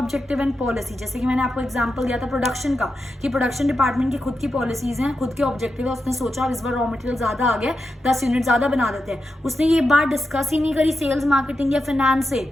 and policy। जैसे कि मैंने आपको example दिया था प्रोडक्शन का, कि प्रोडक्शन डिपार्टमेंट की खुद की पॉलिसीज हैं, खुद के ऑब्जेक्टिव है। उसने सोचा इस बार रॉ मटेरियल ज्यादा आ गया, 10 यूनिट ज्यादा बना देते हैं। उसने ये बात डिस्कस ही नहीं करी सेल्स, मार्केटिंग या फाइनेंस से,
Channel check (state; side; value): normal; both; correlation 0.89